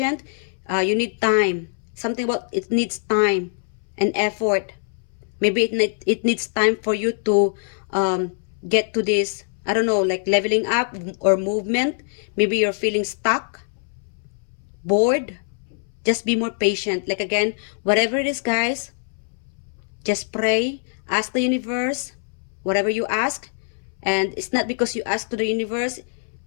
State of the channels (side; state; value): right; silent; 63 dB below the other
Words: You need time. Something about it needs time and effort. Maybe it needs time for you to get to this, I don't know, like leveling up or movement. Maybe you're feeling stuck, bored. Just be more patient. Like again, whatever it is, guys, just pray, ask the universe, whatever you ask. And it's not because you ask to the universe,